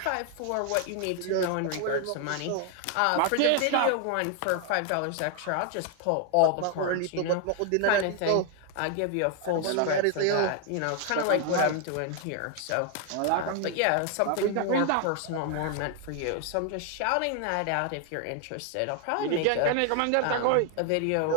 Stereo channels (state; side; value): different; both; correlation 0.00